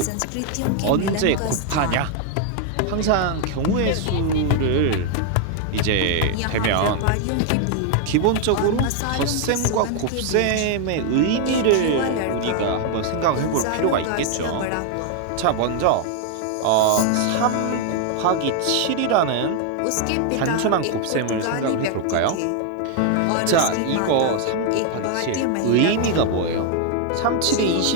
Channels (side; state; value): both; different; correlation 0.00